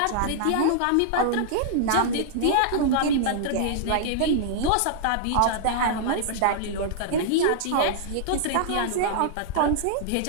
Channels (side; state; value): both; different; correlation -0.01